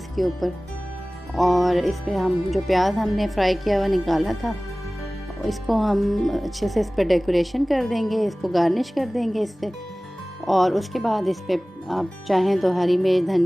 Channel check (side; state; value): both; normal; correlation 0.98